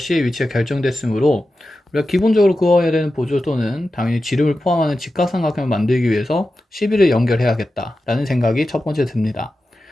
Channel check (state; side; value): normal; both; correlation 0.92